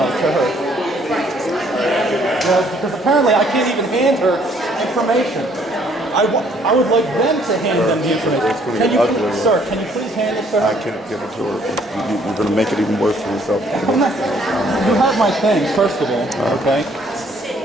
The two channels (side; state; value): both; normal; correlation 0.63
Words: to her? Because apparently I can't even hand her information. I would like them to hand them the information. Can you, sir, can you please hand this to her? I can't give it to her. You're going to make it even worse for yourself. You have my things, first of all, okay?